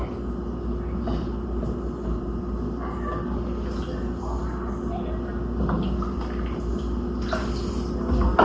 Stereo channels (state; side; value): identical; both; correlation 1.00